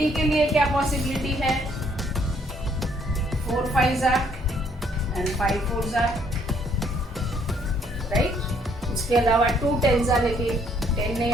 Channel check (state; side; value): normal; both; correlation 0.66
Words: के लिए क्या पॉसिबिलिटी है? 4 5 जा एंड 5 4 जा, राइट? उसके अलावा 2 10 जा, लेकिन 10 नहीं